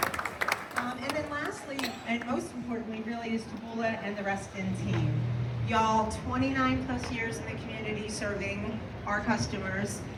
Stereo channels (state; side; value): identical; both; correlation 1.00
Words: And then lastly, and most importantly, really, is Taboola and the Reston team. Y'all, 29 plus years in the community serving our customers.